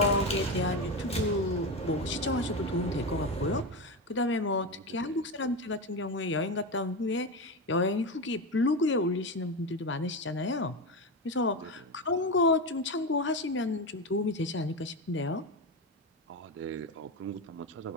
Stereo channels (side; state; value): both; normal; correlation 0.17